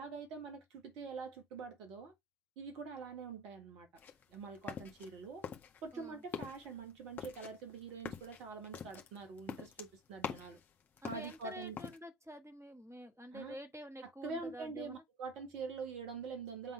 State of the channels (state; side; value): normal; both; correlation 0.38